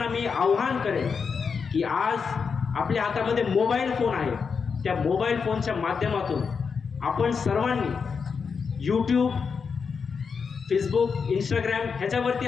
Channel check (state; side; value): quieter; right; 5.7 dB